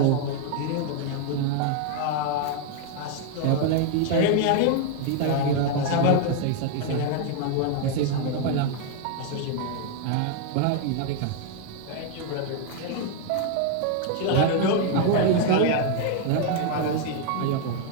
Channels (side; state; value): both; different; correlation 0.00